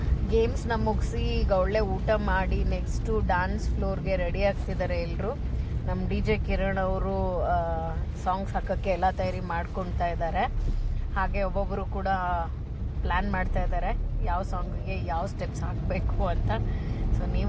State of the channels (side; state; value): both; identical; correlation 1.00